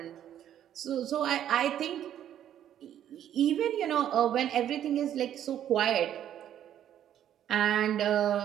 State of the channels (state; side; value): quieter; left; 10.7 dB